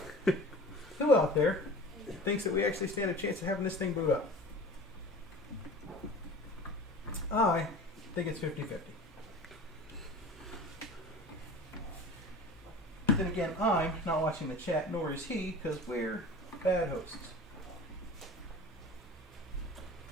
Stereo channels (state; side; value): normal; both; correlation 0.38